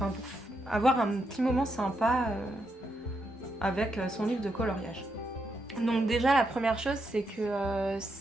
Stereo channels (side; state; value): both; normal; correlation 0.81